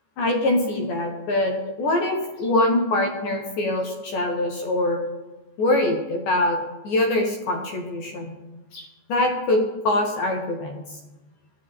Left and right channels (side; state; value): right; late; 14 ms